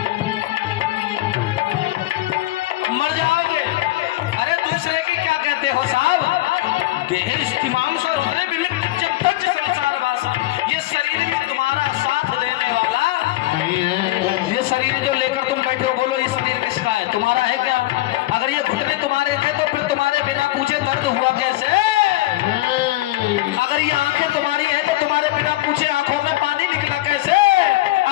मर जाओगे। अरे दूसरे की क्या कहते हो साहब? देह इस्तिमाम से रुद्रे विविध जब तक संसार वासन, ये शरीर भी तुम्हारा साथ देने वाला नहीं है। ये शरीर जो लेकर तुम बैठे हो, बोलो ये शरीर किसका है? तुम्हारा है क्या? अगर ये घुटने तुम्हारे थे तो फिर तुम्हारे बिना पूछे दर्द हुआ कैसे? अगर ये आंखें तुम्हारी हैं तो तुम्हारे बिना पूछे आंखों में पानी निकला कैसे?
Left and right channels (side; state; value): right; quieter; 17.2 dB